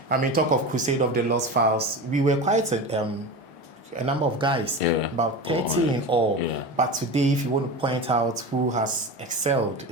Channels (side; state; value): right; late; 1.1 ms